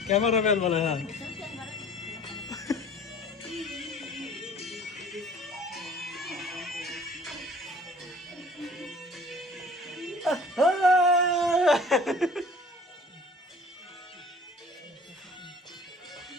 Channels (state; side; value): normal; both; correlation 0.49